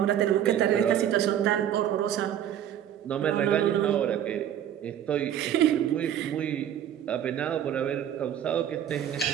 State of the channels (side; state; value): left; quieter; 10.2 dB